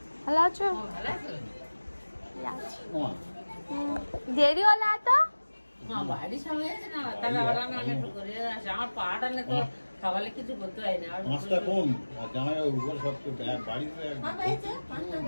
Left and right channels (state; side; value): inverted; both; correlation -1.00